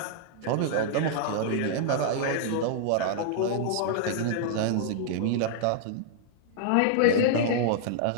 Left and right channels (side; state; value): both; different; correlation -0.01